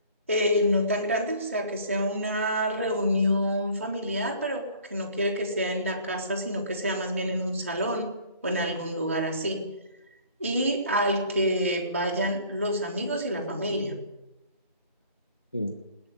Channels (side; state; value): both; inverted; correlation -0.51